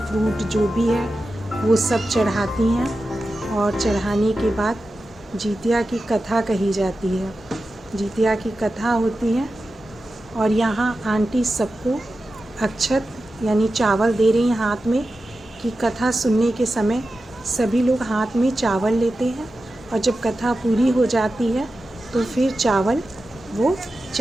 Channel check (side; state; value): both; normal; correlation 0.92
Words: फ्रूट जो भी है वो सब चढ़ाती हैं और चढ़ाने के बाद जीतिया की कथा कही जाती है। जीतिया की कथा होती है और यहाँ आंटी सबको अक्षत यानी चावल दे रही हैं हाथ में कि कथा सुनने के समय सभी लोग हाथ में चावल लेते हैं और जब कथा पूरी हो जाती है तो फिर चावल वो